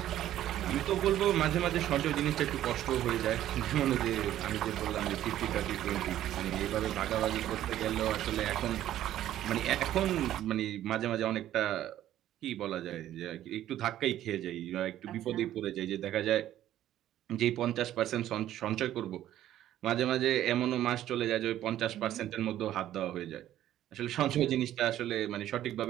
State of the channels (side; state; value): left; quieter; 12.6 dB